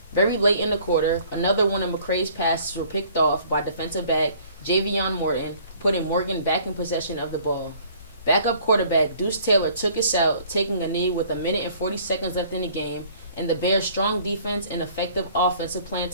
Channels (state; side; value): inverted; both; correlation -0.55